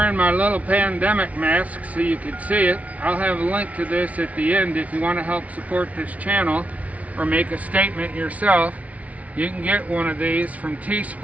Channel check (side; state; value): left; late; 0.068 ms